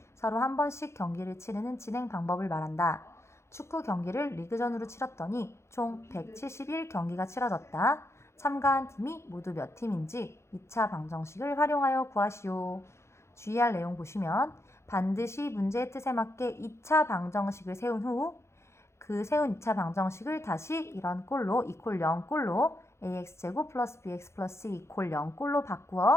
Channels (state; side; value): late; right; 0.13 ms